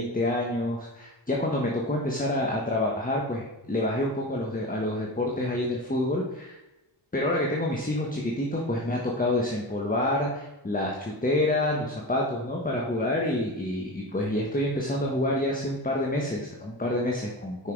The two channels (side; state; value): both; normal; correlation 0.28